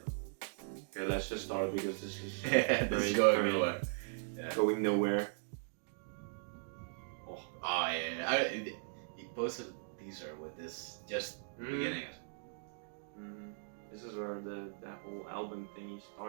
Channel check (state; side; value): silent; left; digital silence